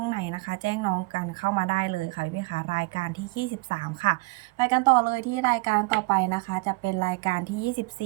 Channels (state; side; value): quieter; left; 26.1 dB